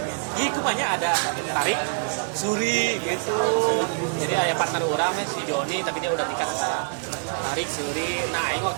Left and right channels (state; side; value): silent; left; digital silence